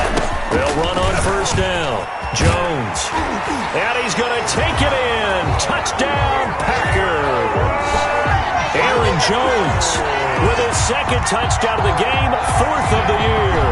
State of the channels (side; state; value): both; identical; correlation 1.00